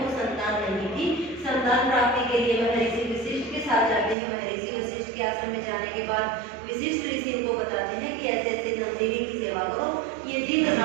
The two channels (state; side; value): drops out; left; at 4.2 s